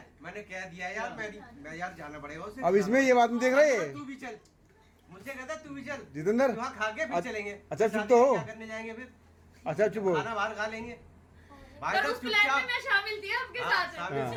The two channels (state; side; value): identical; both; correlation 1.00